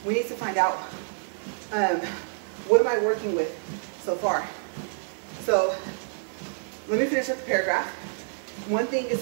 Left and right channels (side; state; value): left; silent; digital silence